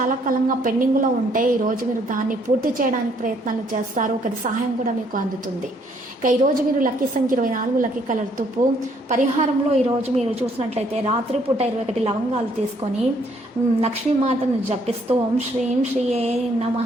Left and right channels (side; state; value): both; normal; correlation 0.67